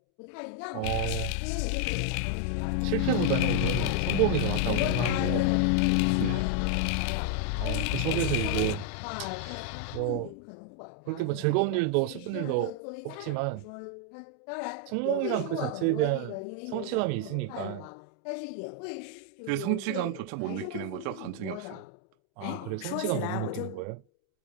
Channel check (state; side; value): different; both; correlation 0.00